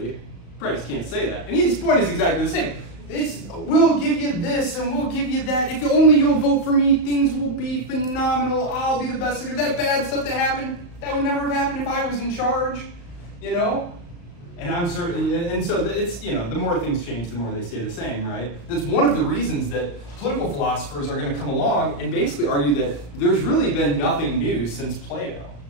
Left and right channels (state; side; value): late; right; 35 ms